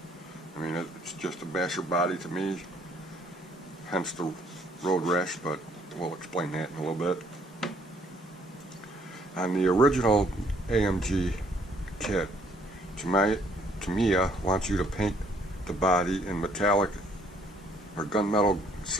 I mean, it's just a basher body to me, hence the road rash, but we'll explain that in a little bit. On the original AMG kit, Tamiya wants you to paint the body in metallic or gunmetal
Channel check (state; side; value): normal; both; correlation 0.64